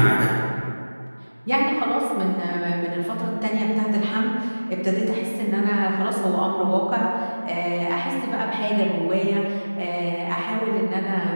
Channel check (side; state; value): both; inverted; correlation -1.00